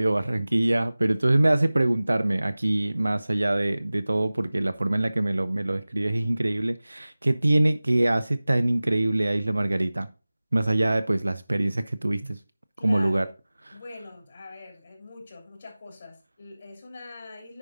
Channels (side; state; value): both; inverted; correlation -0.98